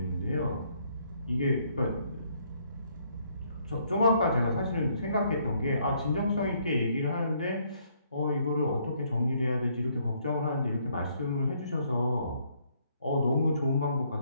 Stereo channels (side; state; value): both; inverted; correlation -0.69